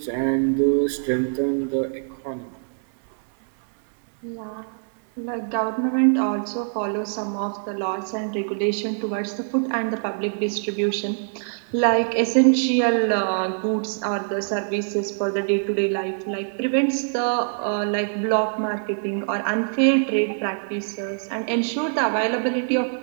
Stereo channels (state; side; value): silent; left; 62 dB below the other